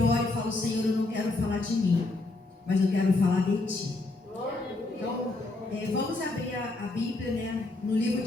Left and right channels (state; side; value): quieter; right; 3.1 dB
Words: e falo, Senhor, eu não quero falar de mim, mas eu quero falar de Ti. Então, vamos abrir a Bíblia, no livro